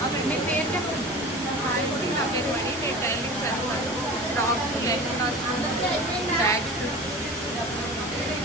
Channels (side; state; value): both; normal; correlation 0.36